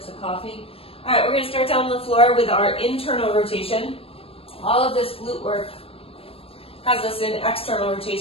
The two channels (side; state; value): right; late; 0.28 ms